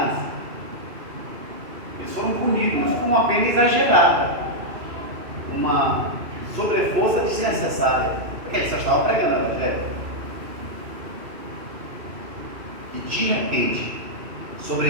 Eles foram punidos com uma pena exagerada, uma sobreforça desnecessária, porque eles só estavam pregando o Evangelho. E de repente,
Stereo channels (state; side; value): late; left; 2.7 ms